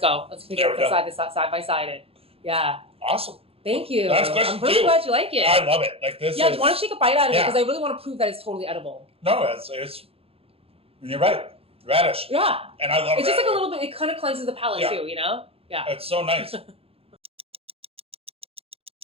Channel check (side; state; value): left; late; 0.28 ms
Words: Let's figure out side by side it. Yeah. Awesome. Thank you. Last question I'm really glad you like it. I love it. Like this. Yeah, why don't you take a bite out of it, because I really want to prove that it's totally edible. No, it's you're right. Radish. Yeah. And I love it's radish. just like a little bit. It kind of cleanses the palate too. Yeah. It's so nice.